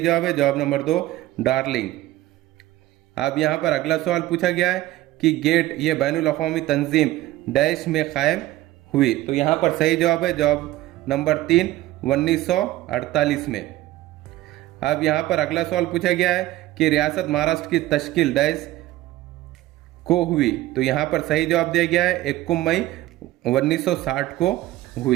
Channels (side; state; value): left; quieter; 16.1 dB